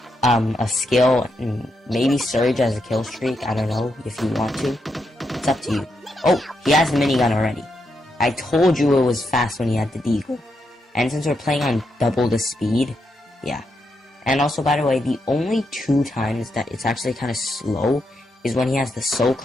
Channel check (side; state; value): both; normal; correlation 0.82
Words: a skill, and maybe Surge as a kill streak, I don't know, if you want to. It's up to you. Oh, he has the minigun already. I told you it was fast when he had the Deagle. And since we're playing on double the speed, yeah. And also, by the way, the only 2 times that it's actually kind of slow is when he has the